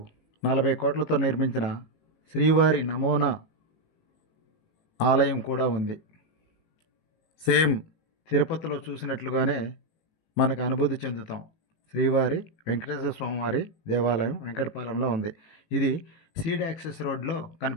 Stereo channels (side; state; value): right; late; 18 ms